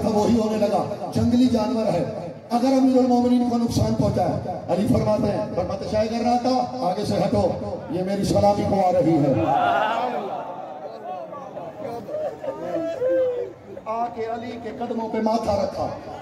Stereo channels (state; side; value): identical; both; correlation 1.00